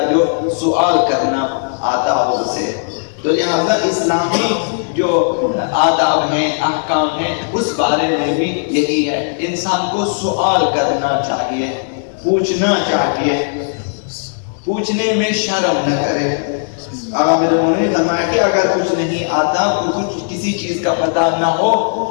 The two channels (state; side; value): silent; right; digital silence